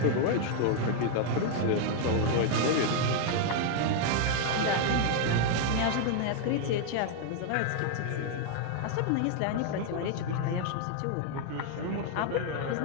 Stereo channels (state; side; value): different; both; correlation 0.00